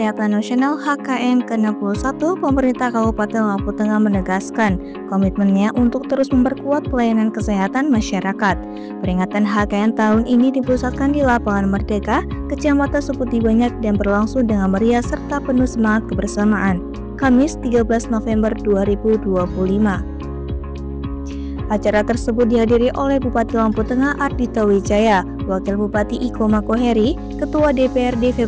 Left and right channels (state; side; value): identical; both; correlation 1.00